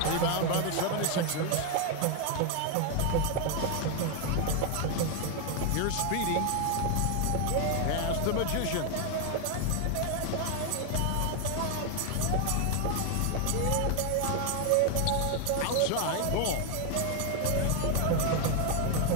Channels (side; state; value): both; different; correlation 0.01